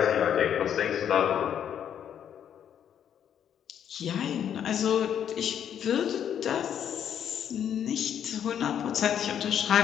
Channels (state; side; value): quieter; right; 9.2 dB